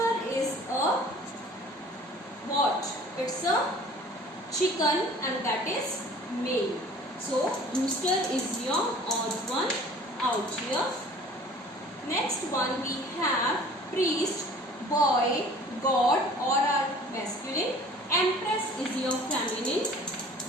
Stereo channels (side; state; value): both; normal; correlation 0.48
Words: is a what? It's a chicken and that is male. So rooster is your odd one out here. Next one we have priest, boy, god or are masculine. Empress is your feminine.